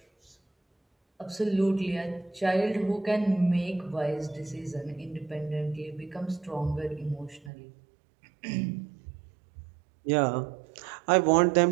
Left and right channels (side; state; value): left; drops out; at 7.5 s